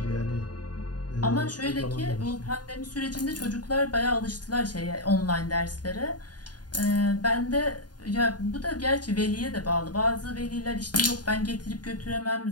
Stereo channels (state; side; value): late; right; 0.69 ms